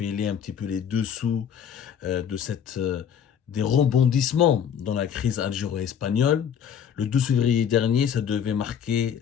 un petit peu les dessous de des rebondissements dans la crise algéro-espagnole. Le 12 février dernier, ça devait marquer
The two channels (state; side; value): quieter; right; 8.3 dB